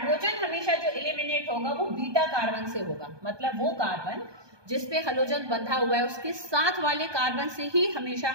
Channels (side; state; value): left; late; 1.2 ms